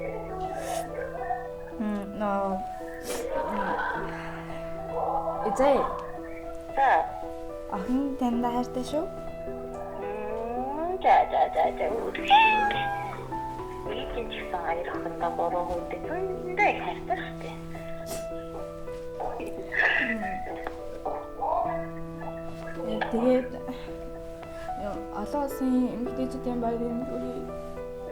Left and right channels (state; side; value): identical; both; correlation 1.00